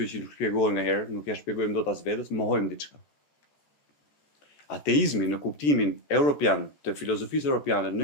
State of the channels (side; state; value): right; late; 14 ms